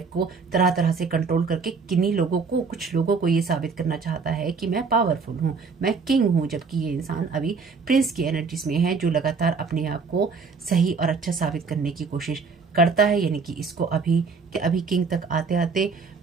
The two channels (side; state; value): left; quieter; 5.0 dB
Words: को तरह तरह से कंट्रोल करके किन्हीं लोगों को, कुछ लोगों को ये साबित करना चाहता है कि मैं पावरफुल हूँ, मैं किंग हूँ, जबकि ये इंसान अभी प्रिंस की एनर्जीज में है, जो लगातार अपने आप को सही और अच्छा साबित करने की कोशिश करता है। यानी कि इसको अभी किंग तक आते आते